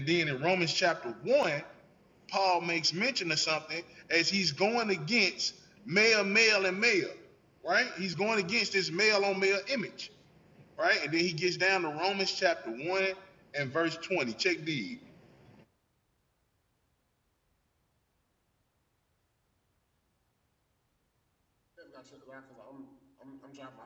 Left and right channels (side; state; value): both; identical; correlation 1.00